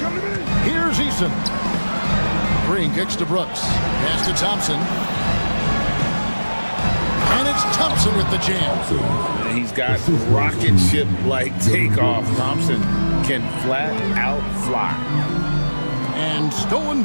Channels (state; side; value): inverted; both; correlation -1.00